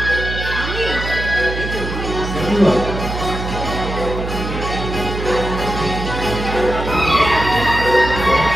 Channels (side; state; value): right; noise; hum, 6 dB below the sound